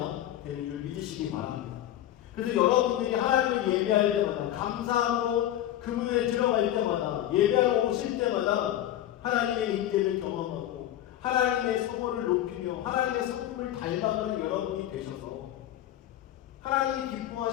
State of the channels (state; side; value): quieter; right; 12.6 dB